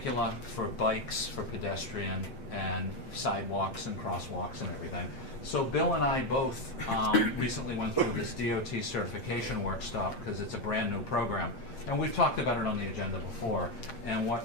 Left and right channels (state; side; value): late; right; 7.6 ms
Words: for bikes, for pedestrian, and sidewalks and crosswalks and everything. So Bill and I both recently went through this DOT certification workshop because it's a brand new program. And we've talked about it on the agenda before. And